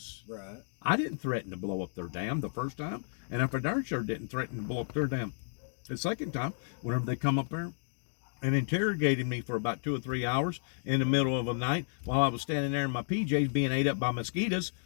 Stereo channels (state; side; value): silent; right; digital silence